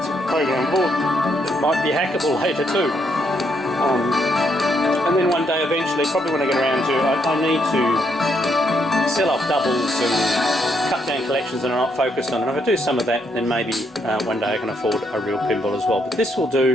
a program board that might be hackable later too. And then one day eventually, probably when I get around to, I need to sell off doubles and cut down collections that are not focused on. And if I do some of that, then maybe one day I can afford a real pinball as well. But this will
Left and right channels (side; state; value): both; normal; correlation 0.75